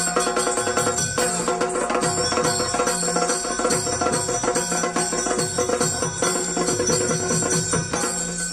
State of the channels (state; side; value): noise; left; rumble, 29 dB below the sound